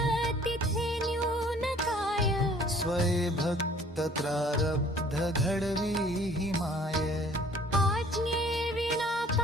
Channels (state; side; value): normal; both; correlation 0.54